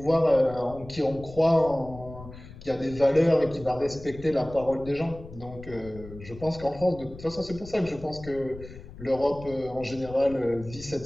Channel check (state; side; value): noise; left; rumble, 16 dB below the sound